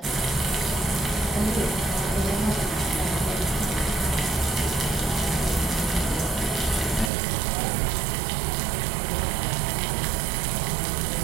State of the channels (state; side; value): drops out; left; at 7.1 s